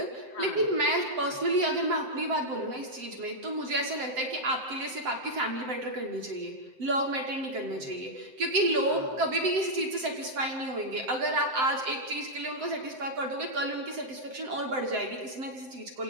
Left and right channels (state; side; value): late; left; 7.7 ms